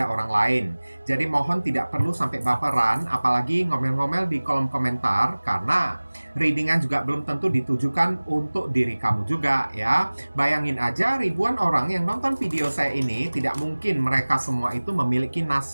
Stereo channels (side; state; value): both; inverted; correlation -1.00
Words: orang lain. Jadi mohon tidak perlu sampai baperan, apalagi ngomel-ngomel di kolom komentar, karena readingan juga belum tentu ditujukan untuk diri kamu juga ya. Bayangin aja ribuan orang yang nonton video saya ini, tidak mungkin mereka semua itu memiliki